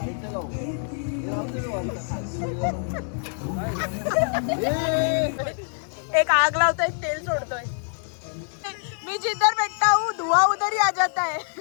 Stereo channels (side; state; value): right; silent; 60 dB below the other